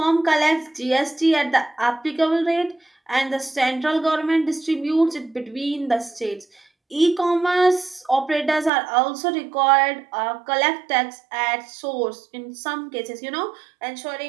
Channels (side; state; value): left; drops out; at 8.7 s